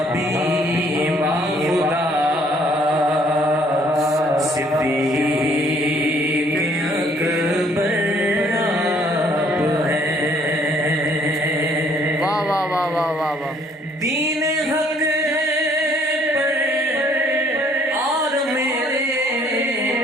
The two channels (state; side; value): normal; both; correlation 0.62